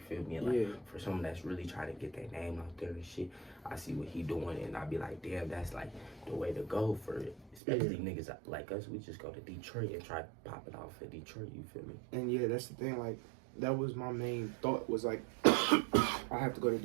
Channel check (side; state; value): left; drops out; at 7.6 s